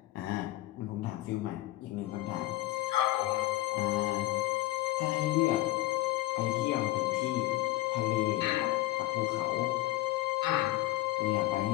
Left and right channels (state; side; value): quieter; right; 17.2 dB